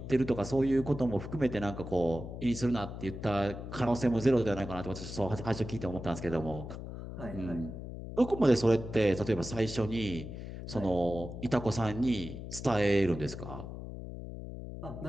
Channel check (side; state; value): left; noise; hum, 9 dB below the sound